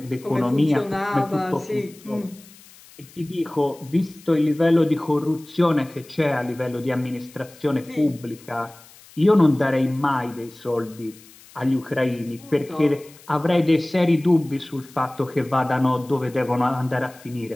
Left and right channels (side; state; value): left; noise; hiss, 23 dB below the sound